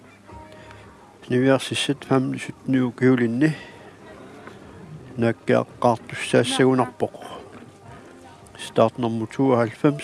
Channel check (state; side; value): identical; both; correlation 1.00